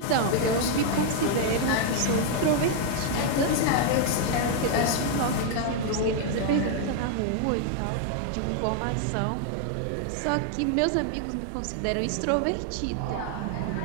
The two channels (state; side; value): different; both; correlation 0.00